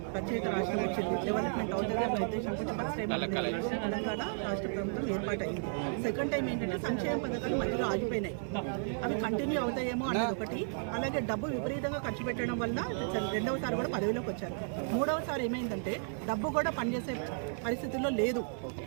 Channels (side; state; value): left; silent; digital silence